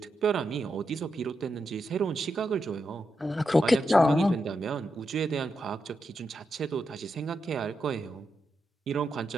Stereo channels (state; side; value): normal; both; correlation 0.86